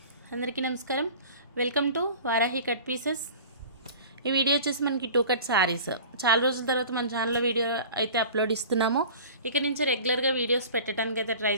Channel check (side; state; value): both; inverted; correlation -0.41